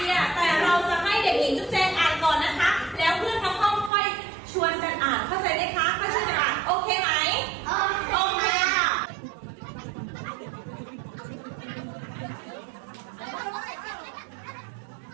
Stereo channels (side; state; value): left; drops out; at 3.9 s